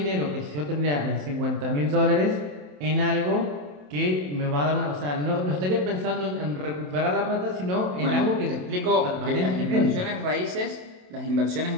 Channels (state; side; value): late; left; 27 ms